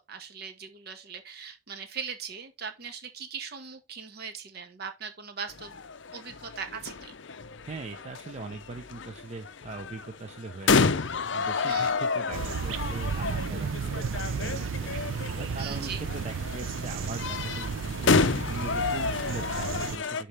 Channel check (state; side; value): normal; both; correlation 0.11